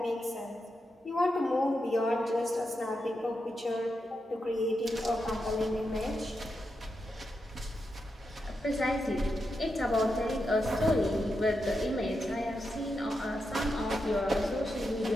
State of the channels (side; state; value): both; normal; correlation 0.86